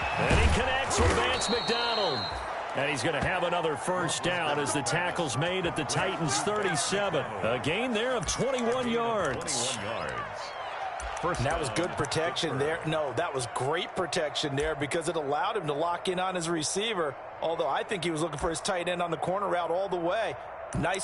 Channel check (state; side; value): identical; both; correlation 1.00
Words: he connects with Vance McDonald. And he's going to have another 1st down as the tackle's made at the Titans' 37. A gain there of 21 yards. 21 yards. And that was good protection there. No, that was great protection there because it allowed him to lock in on his receiver, although I think he was looking for his tight end on the corner route all the way.